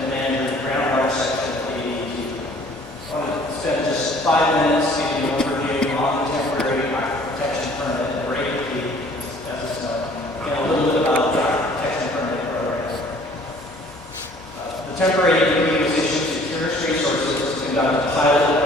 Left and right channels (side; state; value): both; normal; correlation 0.55